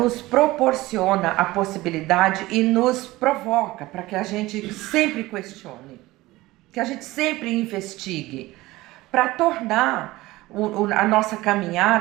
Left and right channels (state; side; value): quieter; left; 18.8 dB